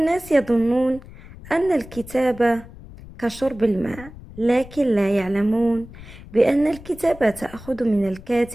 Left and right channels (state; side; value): noise; left; rumble, 17 dB below the sound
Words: يظنون أن الكتابة كشرب الماء، لكن لا يعلمون بأن الكتابة تأخذ من